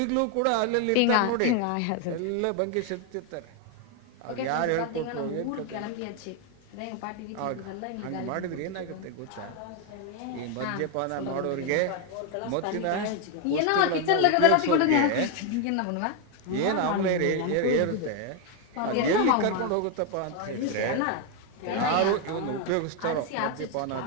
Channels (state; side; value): different; both; correlation 0.01